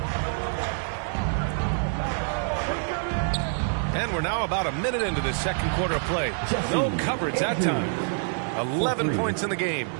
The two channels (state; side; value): silent; left; 58 dB below the other